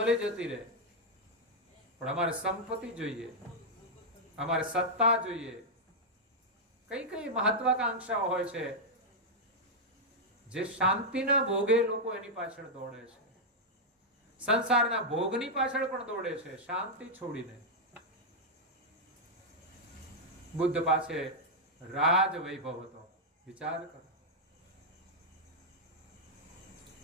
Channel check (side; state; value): both; normal; correlation -0.04